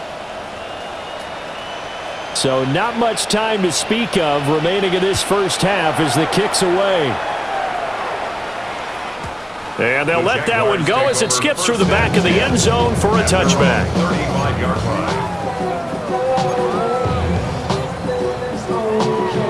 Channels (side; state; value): both; identical; correlation 1.00